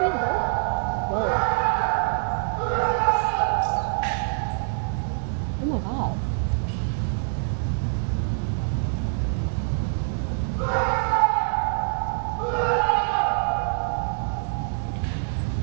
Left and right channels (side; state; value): left; silent; 62 dB below the other